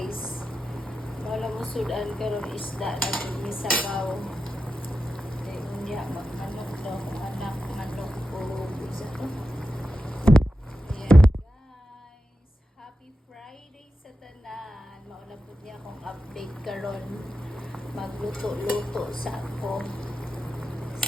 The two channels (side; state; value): both; normal; correlation 0.91